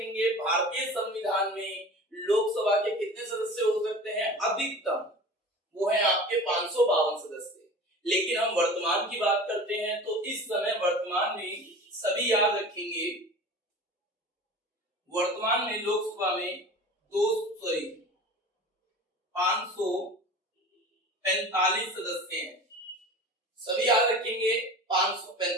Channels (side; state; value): both; normal; correlation 0.37